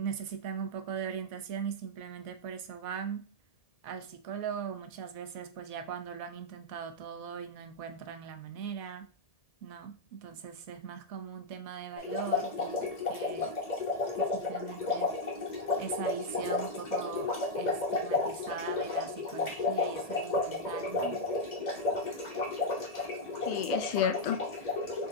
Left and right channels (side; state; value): right; late; 1.7 ms